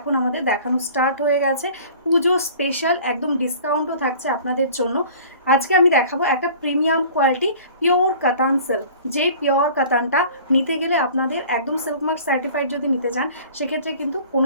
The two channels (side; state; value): both; inverted; correlation -0.46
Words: আমাদের দেখানো স্টার্ট হয়ে গেছে। পুজো স্পেশাল একদম ডিসকাউন্টও থাকছে আপনাদের জন্য। আজকে আমি দেখাবো একটা প্রিমিয়াম কোয়ালিটি পিওর কাতান সিল্ক। যে পিওর কাতানটা নিতে গেলে আপনাদের একদম সিল্ক মার্ক সার্টিফাইড যদি নিতে চান সেক্ষেত্রে কিন্তু